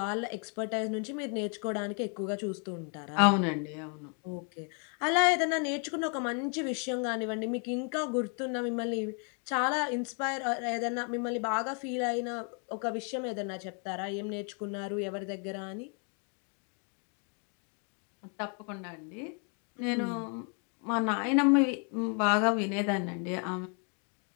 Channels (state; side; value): quieter; right; 39.8 dB